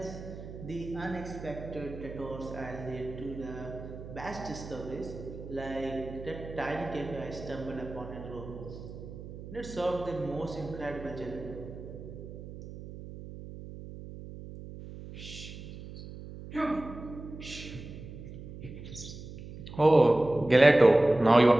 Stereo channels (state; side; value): noise; right; hum, 12 dB below the sound